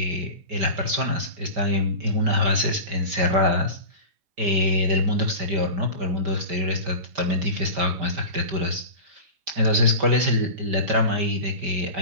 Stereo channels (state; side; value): late; left; 5.1 ms